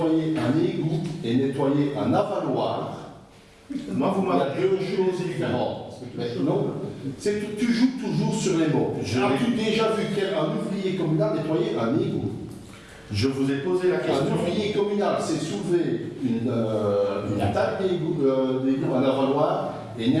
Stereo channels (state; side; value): identical; both; correlation 1.00